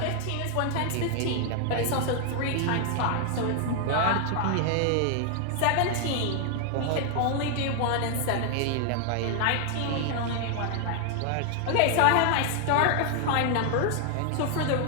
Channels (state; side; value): different; both; correlation 0.00